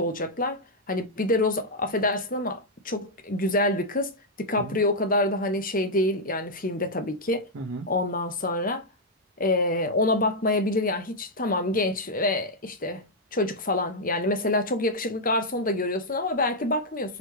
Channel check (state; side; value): normal; both; correlation -0.04